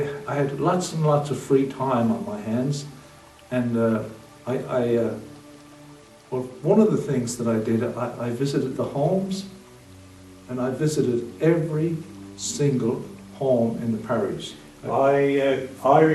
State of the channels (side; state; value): both; identical; correlation 1.00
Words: had lots and lots of free time on my hands, and well, one of the things that I did, I visited the homes, and I visited every single home in the parish. I